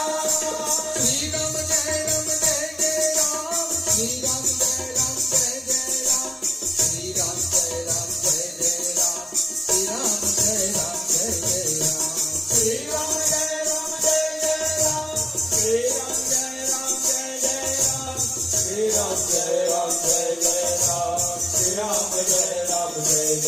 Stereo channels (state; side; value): normal; both; correlation 0.97